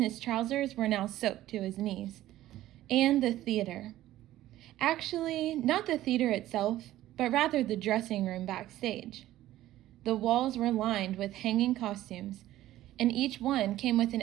trousers were now soaked to his knees. And the theater. Actually, not the theater itself, but rather the dressing room backstage. The walls were lined with hanging costumes, and each one came with an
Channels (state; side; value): quieter; left; 14.5 dB